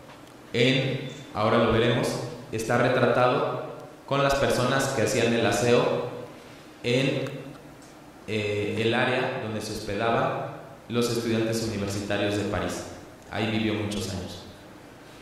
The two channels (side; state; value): both; identical; correlation 1.00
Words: ahora lo veremos, está retratado con las personas que hacían el aseo en el área donde se hospedaban los estudiantes universitarios de París. Ahí vivió muchos años.